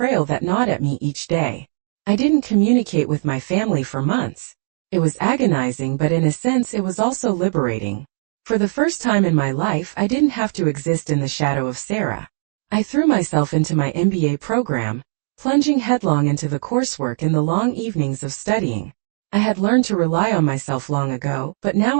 that gnawed at me each day. I didn't communicate with my family for months. It was agonizing, but in a sense it was also liberating. For the first time in my life, I didn't have to exist in the shadow of Sarah. I threw myself into my MBA program, plunging headlong into the coursework and the long evenings of studying. I had learned to rely on myself long ago, but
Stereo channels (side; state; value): left; silent; digital silence